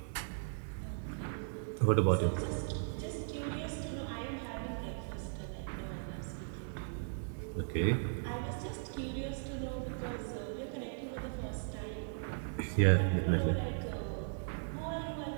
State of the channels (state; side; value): silent; left; digital silence